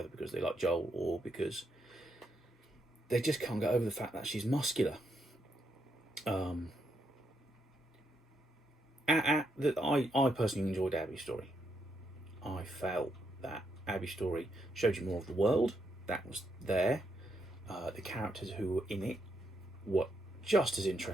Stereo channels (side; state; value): both; normal; correlation 0.79